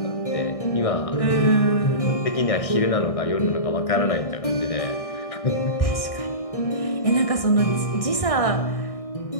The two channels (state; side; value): late; right; 1.6 ms